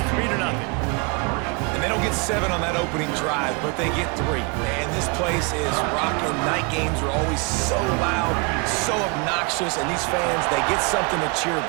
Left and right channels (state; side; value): quieter; left; 31.2 dB